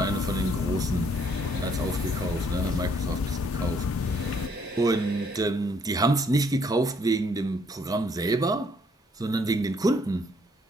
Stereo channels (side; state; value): both; normal; correlation 0.67